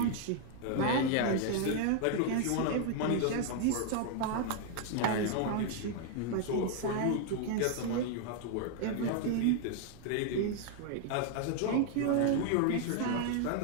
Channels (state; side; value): different; both; correlation 0.00